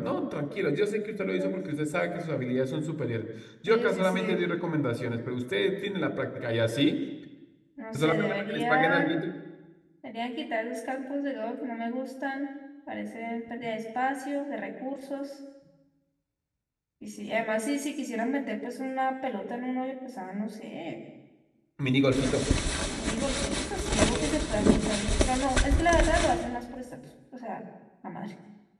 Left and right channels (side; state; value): both; identical; correlation 1.00